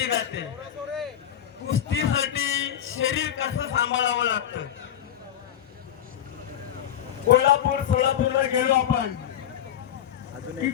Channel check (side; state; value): right; quieter; 10.3 dB